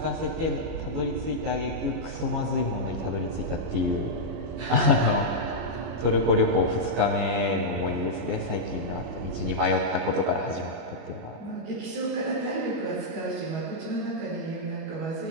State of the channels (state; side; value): late; left; 25 ms